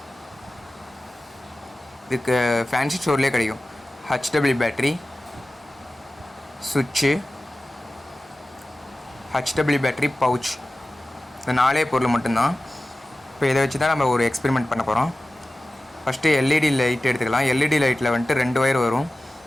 இதுக்கு ஃபேன்சி ஸ்டோர்லேயே கிடைக்கும். HW பேட்ரி, சுவிட்சு, HW பேட்ரி பவுச், இந்த 4 பொருள் மட்டும்தான். இப்போ இதை வச்சு தான் நம்ம ஒரு எக்ஸ்பெரிமெண்ட் பண்ண போகிறோம். ஃபஸ்ட்டு எல்இடி லைட் எடுத்துக்கலாம். எல்இடி லைட்டில் வந்துட்டு 2 ஒயர் வரும்,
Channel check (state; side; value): normal; both; correlation 0.96